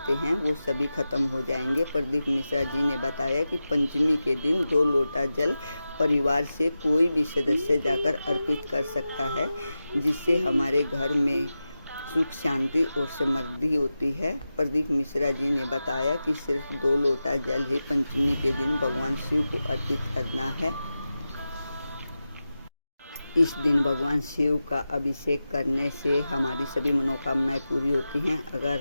हैं वो सभी खत्म हो जाएंगे। प्रदीप मिश्रा जी ने बताया कि पंचमी के दिन 2 लोटा जल परिवार से कोई भी सदस्य जाकर अर्पित कर सकता है, जिससे हमारे घर में सुख शांति और समृद्धि होती है। प्रदीप मिश्रा जी ने बताया कि सिर्फ 2 लोटा जल ही पंचमी के दिन भगवान शिव को अर्पित करना है। इस दिन भगवान शिव का अभिषेक करने से हमारी सभी मनोकामनाएं पूरी होती हैं। अगर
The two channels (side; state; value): both; inverted; correlation -0.93